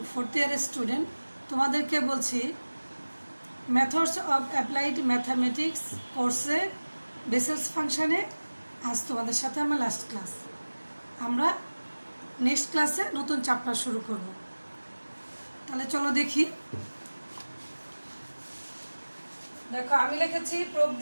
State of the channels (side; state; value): both; inverted; correlation -1.00